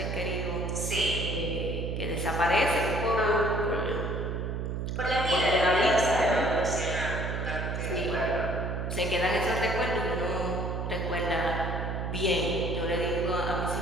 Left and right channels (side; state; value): right; noise; hum, 3 dB below the sound